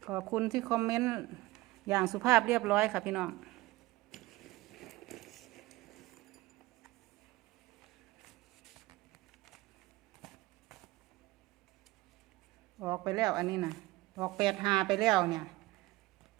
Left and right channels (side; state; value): left; quieter; 19.5 dB